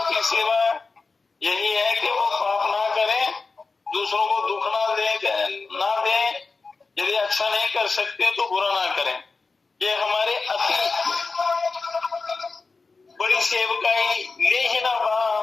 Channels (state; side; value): quieter; right; 4.1 dB